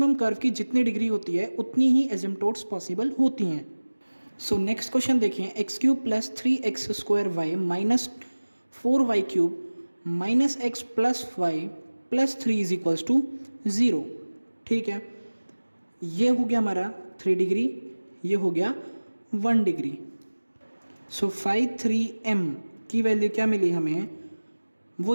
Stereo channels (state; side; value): inverted; both; correlation -1.00